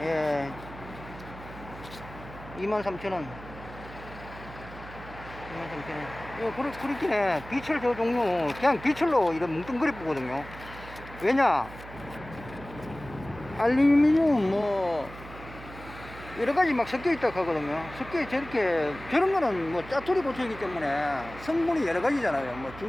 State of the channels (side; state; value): right; noise; hum, 15 dB below the sound